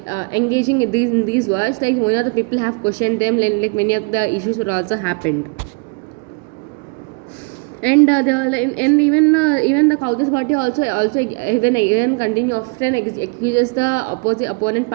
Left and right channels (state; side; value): quieter; left; 33.2 dB